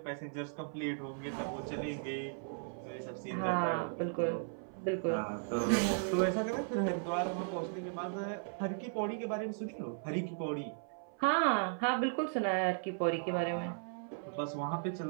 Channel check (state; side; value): silent; left; 54 dB below the other